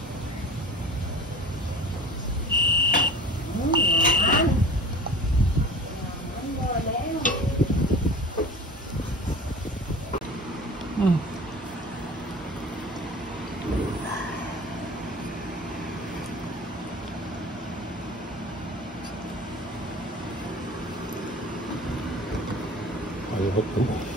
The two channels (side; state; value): both; normal; correlation 0.39